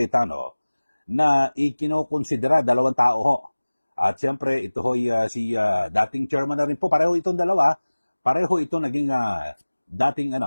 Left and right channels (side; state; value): both; inverted; correlation -1.00